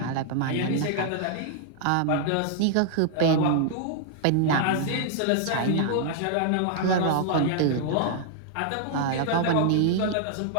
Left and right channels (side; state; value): both; different; correlation -0.01